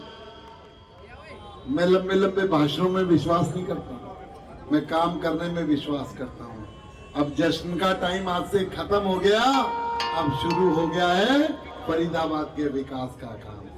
लंबे भाषणों में विश्वास नहीं करता, मैं काम करने में विश्वास करता हूँ। अब जश्न का टाइम आज से खत्म हो गया, अब शुरू हो गया है फरीदाबाद के विकास का काम।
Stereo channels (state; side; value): identical; both; correlation 1.00